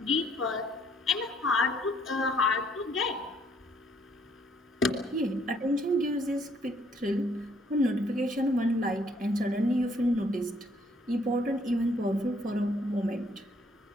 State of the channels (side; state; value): both; normal; correlation 0.66